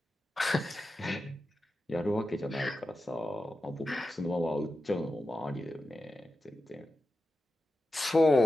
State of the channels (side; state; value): both; normal; correlation 0.91